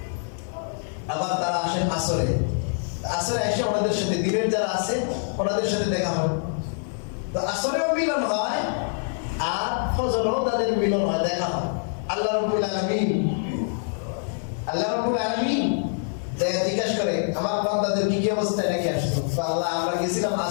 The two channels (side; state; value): right; silent; digital silence